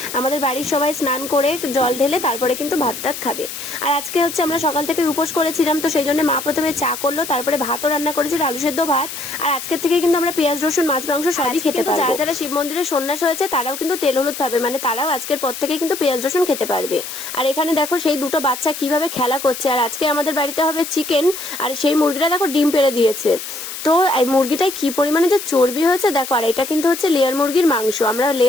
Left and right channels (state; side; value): noise; left; hiss, 9 dB below the sound